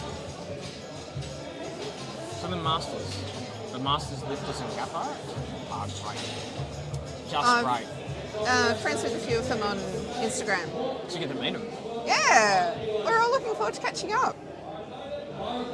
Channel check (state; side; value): identical; both; correlation 1.00